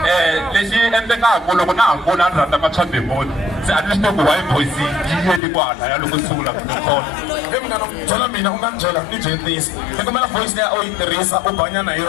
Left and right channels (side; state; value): right; drops out; at 5.4 s